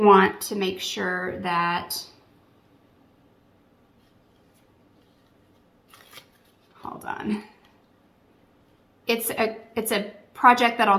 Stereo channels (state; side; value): identical; both; correlation 1.00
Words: want to make sure that, hold on. It's a project that'll